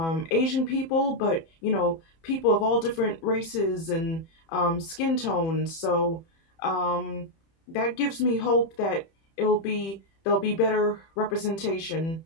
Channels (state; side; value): late; right; 31 ms